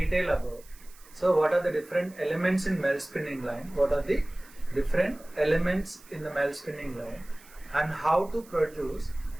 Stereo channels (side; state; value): right; noise; hiss, 24 dB below the sound